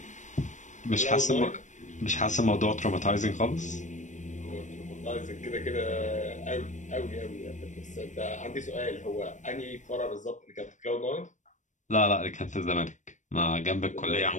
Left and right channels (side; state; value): right; late; 0.35 ms